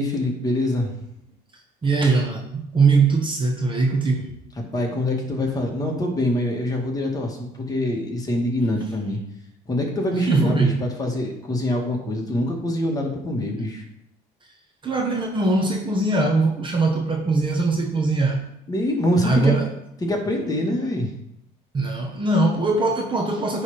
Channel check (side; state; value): both; normal; correlation 0.68